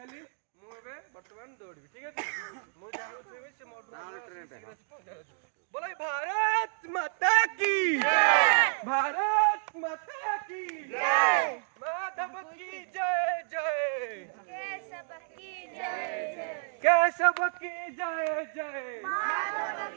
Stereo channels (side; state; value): left; silent; digital silence